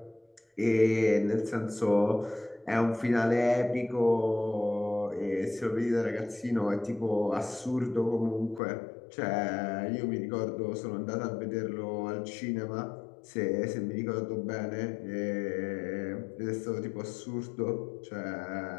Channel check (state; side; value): drops out; right; at 8.6 s